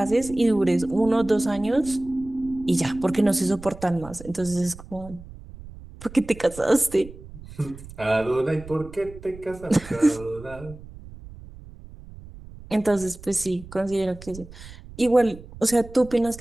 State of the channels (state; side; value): noise; right; rumble, 17 dB below the sound